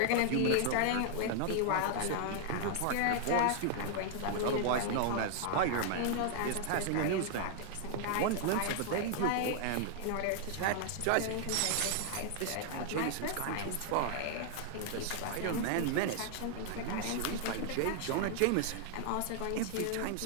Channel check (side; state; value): both; different; correlation 0.00